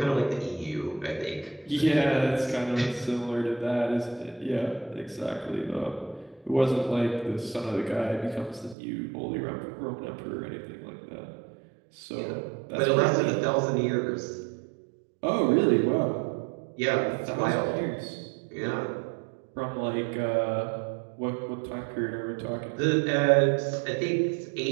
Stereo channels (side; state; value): left; drops out; at 8.8 s